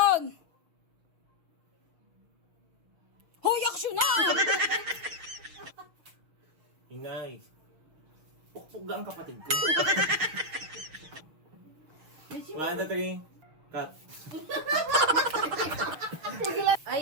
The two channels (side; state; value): left; late; 6.4 ms